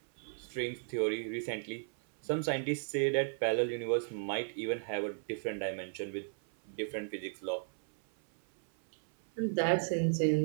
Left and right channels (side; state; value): left; silent; 55 dB below the other